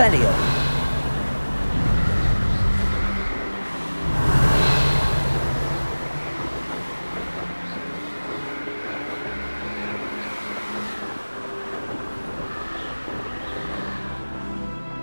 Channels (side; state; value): both; inverted; correlation -1.00